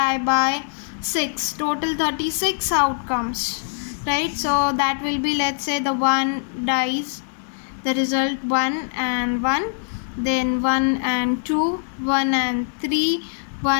by 6, total 36 outcomes, right? So that will be, let's say, the 1 dice, the result 1 and 1, then 1 and 2, 1 and 3,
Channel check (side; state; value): right; silent; digital silence